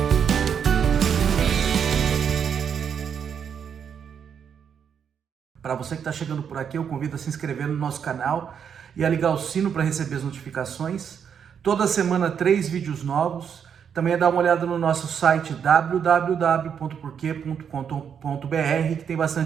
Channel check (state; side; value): quieter; left; 7.6 dB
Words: Para você que está chegando por aqui, eu convido a se inscrever no nosso canal e a ligar o sino para receber as notificações. Toda semana 3 vídeos novos. Também é dar uma olhada no nosso site www.porquê.com.br, que tem